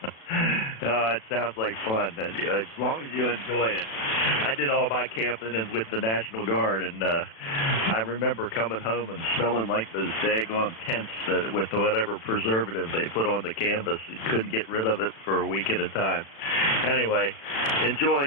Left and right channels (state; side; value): late; right; 36 ms